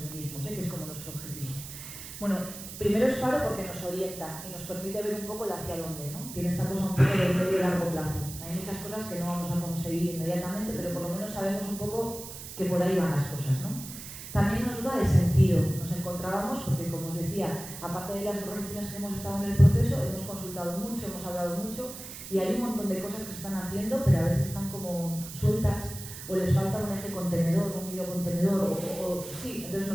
que es como nuestro objetivo. Bueno, primero es faro porque nos orienta y nos permite ver un poco el hacia dónde, ¿no? Tiene esta cosa un poco de medio y largo plazo. Hay muchas cosas que no vamos a conseguir inmediatamente, pero por lo menos sabemos un poco que por ahí van las cosas, ¿no? También nos da de sentido. Nos encontrábamos, porque como os decía, aparte de las organizaciones que hemos estado en el proceso, hemos consultado mucho, hemos hablado mucho, y hay un montón de cosas que se están haciendo, pero a veces están como sueltas, o les falta un eje contenedor, un hilo contenedor, sí. Entonces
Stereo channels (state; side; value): noise; right; hiss, 11 dB below the sound